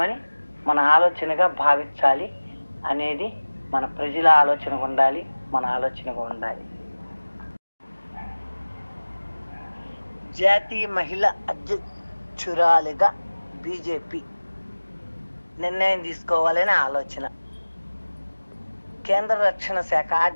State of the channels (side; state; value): both; inverted; correlation -1.00